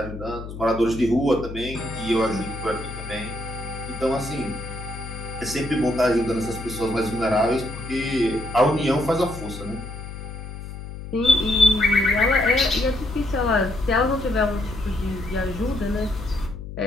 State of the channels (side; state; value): left; noise; hum, 10 dB below the sound